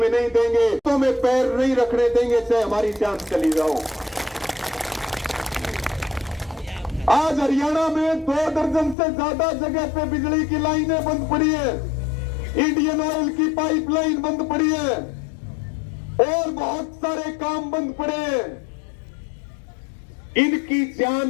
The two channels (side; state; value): right; drops out; at 9.0 s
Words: नहीं देंगे। तो में पैर नहीं रखने देंगे, चाहे हमारी जान चली जाओ। आज हरियाणा में 2 दर्जन से ज्यादा जगह पे बिजली की लाइनें बंद पड़ी है, इंडियन ऑयल की पाइपलाइन बंद पड़ी है और बहुत सारे काम बंद पड़े हैं। इनकी